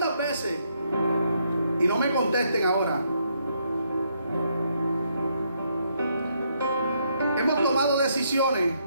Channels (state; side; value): inverted; both; correlation -0.74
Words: veces, y no me contesten ahora, hemos tomado decisiones